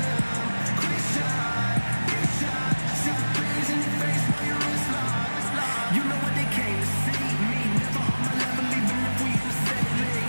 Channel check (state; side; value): inverted; both; correlation -1.00